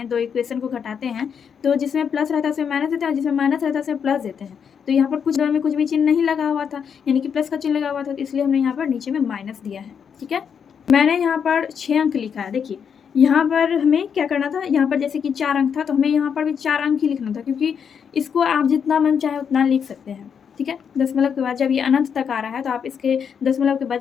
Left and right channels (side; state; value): right; quieter; 7.2 dB